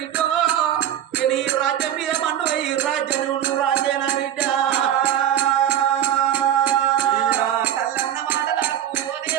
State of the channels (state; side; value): quieter; left; 10.8 dB